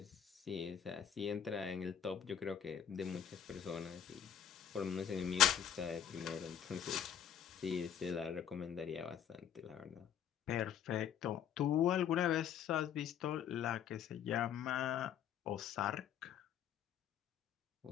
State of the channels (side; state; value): right; quieter; 9.1 dB